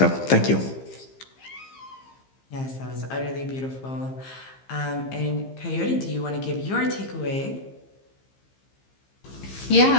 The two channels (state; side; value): late; right; 15 ms